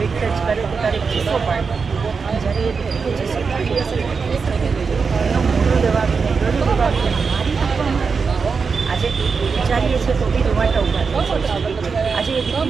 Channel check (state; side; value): quieter; left; 5.2 dB